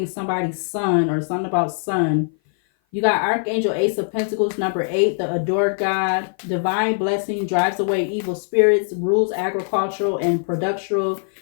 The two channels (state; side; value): silent; right; 57 dB below the other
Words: somebody's son or something about sun. You got Archangel Ace of Pentacles, number 8, the adored God. Divine blessing drives away evil spirits, rules agricultural and productional.